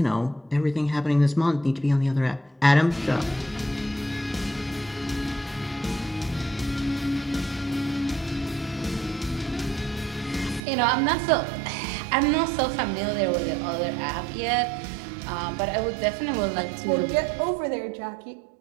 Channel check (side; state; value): left; drops out; at 10.6 s